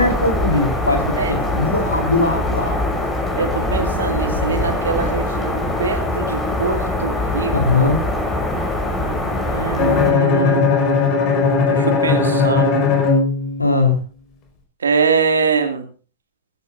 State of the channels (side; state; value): both; normal; correlation -0.01